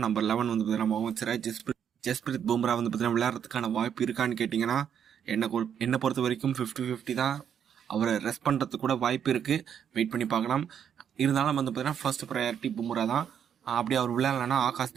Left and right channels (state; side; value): quieter; left; 8.5 dB